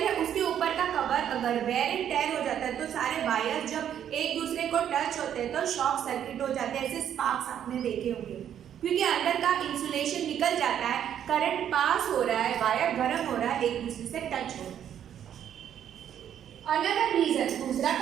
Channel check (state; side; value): quieter; left; 9.7 dB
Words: है उसके ऊपर का कवर अगर वेयर एंड टेयर हो जाता है तो सारे वायर जब एक दूसरे को टच होते हैं तो शॉर्ट सर्किट हो जाते हैं। ऐसे स्पार्क्स आपने देखे होंगे, क्योंकि अंदर का इंसुलेशन निकल जाता है, करंट पास हो रहा है, वायर गर्म हो रहा है, एक दूसरे से टच हो रहा है। Another reason, दूसरा